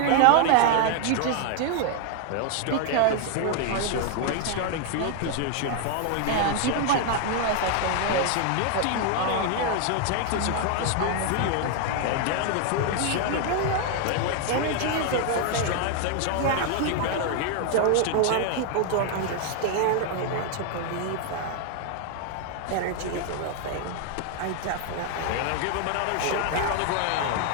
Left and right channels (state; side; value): different; both; correlation 0.00